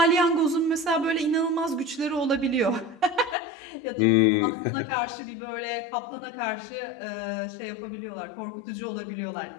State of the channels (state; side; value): drops out; right; at 3.4 s